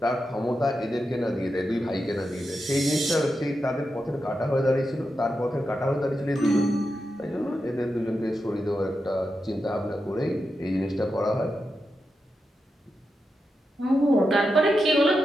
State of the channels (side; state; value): both; normal; correlation 0.88